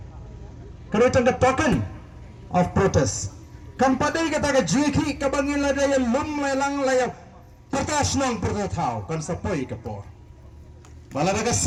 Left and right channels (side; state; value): both; identical; correlation 1.00